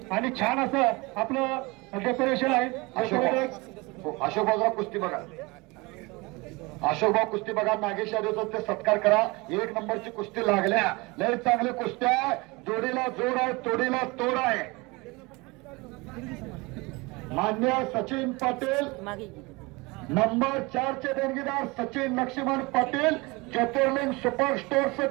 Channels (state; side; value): quieter; left; 24.9 dB